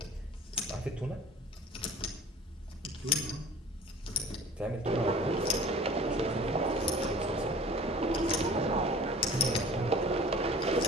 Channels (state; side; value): normal; both; correlation 0.43